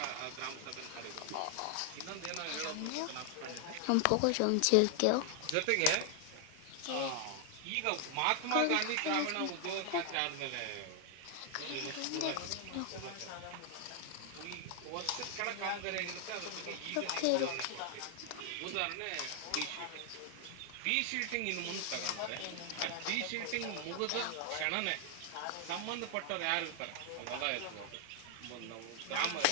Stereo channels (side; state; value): both; different; correlation 0.00